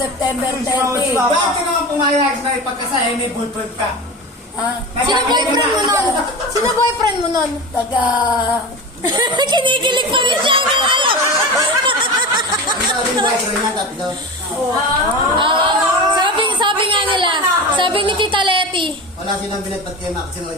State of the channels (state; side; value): normal; both; correlation 0.28